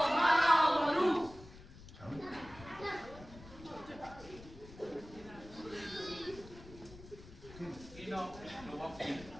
So. Ino, no wapi.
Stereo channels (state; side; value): noise; left; rumble, 17 dB below the sound